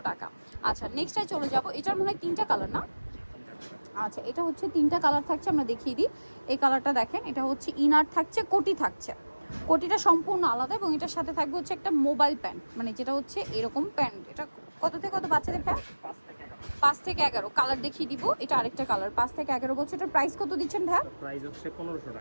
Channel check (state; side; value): inverted; both; correlation -1.00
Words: টাকা। আচ্ছা, নেক্সটটায় চলে যাব। এটার মনে হয় তিনটা কালার না? আচ্ছা, এটা হচ্ছে তিনটা কালার থাকছে, আমরা দেখিয়ে দিই। এই কালারটা দেখেন, এটা হচ্ছে ইনার থাকছে, কোটি থাকছে। কোটিটা সম্পূর্ণ আলাদা এবং এটার সাথে থাকবে হচ্ছে একটা মোবাইল প্যান্ট, মানে যেটা হচ্ছে এরকম প্যান্ট। এটা কত থেকে কত বাচ্চাদের প্যান্ট? 5 থেকে 11 কালার দেখিয়ে দিব। এটা আরেকটা কালার, 5 থেকে 11 বছর। এটার প্রাইস কত দিচ্ছেন ভাইয়া? প্রাইস হচ্ছে 1500